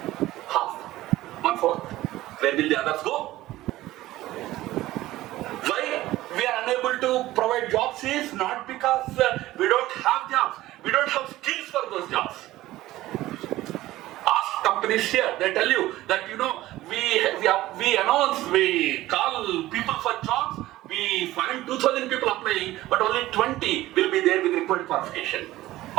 Half. 1/4. Where will the others go? Why we are unable to provide jobs is not because we don't have jobs. We don't have skills for those jobs. Ask companies here, they tell you that we announce, we call people for jobs, we find 2,000 people applying, but only 20 will be there with required qualification.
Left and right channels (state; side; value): quieter; left; 16.3 dB